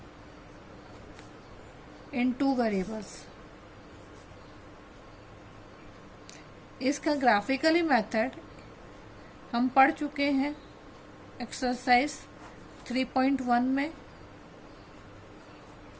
in two variables. इसका ग्राफिकली मेथड हम पढ़ चुके हैं एक्सरसाइज 3.1 में।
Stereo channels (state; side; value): identical; both; correlation 1.00